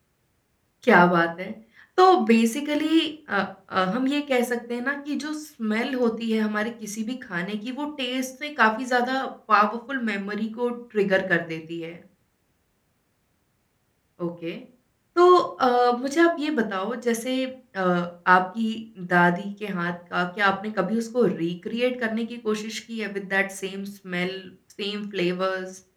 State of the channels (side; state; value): both; identical; correlation 1.00